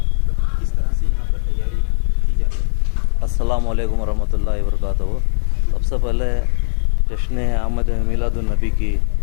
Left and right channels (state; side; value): silent; right; digital silence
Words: मतलब किस तरह से यहाँ पर तैयारी की जा रही है? अस्सलाम वालेकुम रहमतुल्लाहि व बरकातहू। सबसे पहले जश्न अहमद मिलादुन नबी की